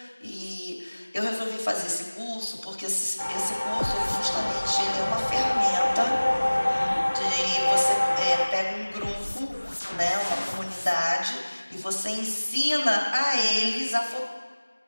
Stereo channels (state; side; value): inverted; both; correlation -1.00